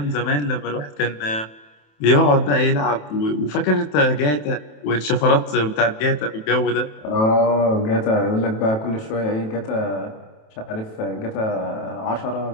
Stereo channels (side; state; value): right; late; 27 ms